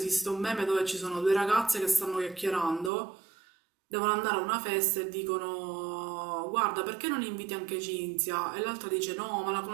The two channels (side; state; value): left; drops out; at 2.9 s